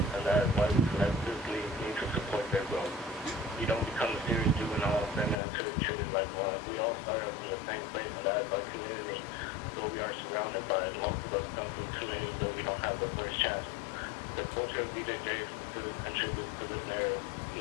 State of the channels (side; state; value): right; drops out; at 5.4 s